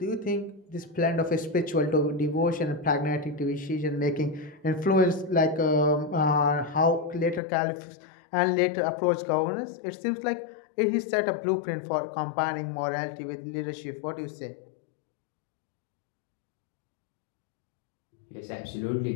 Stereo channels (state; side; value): drops out; right; at 7.4 s